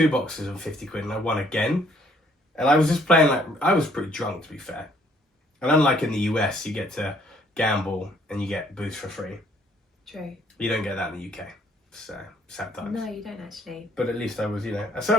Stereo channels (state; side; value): normal; both; correlation 0.64